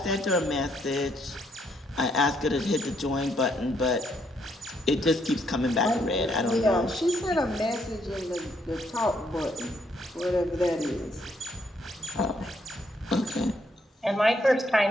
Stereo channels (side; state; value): both; normal; correlation 0.72